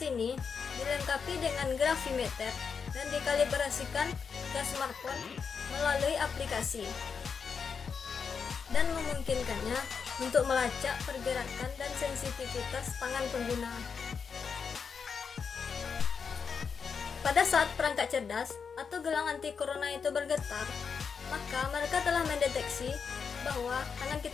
ini dilengkapi dengan gravimeter dan dikalibrasikan ke smartphone melalui aplikasi dan memungkinkannya untuk melacak pergerakan dan sensitivitas tangan pengguna. Pada saat perangkat cerdas atau gelang anti corona itu bergetar, maka mereka telah mendeteksi bahwa tangan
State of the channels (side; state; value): right; quieter; 6.0 dB